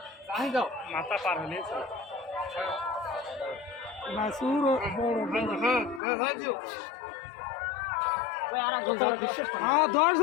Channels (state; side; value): drops out; right; at 6.0 s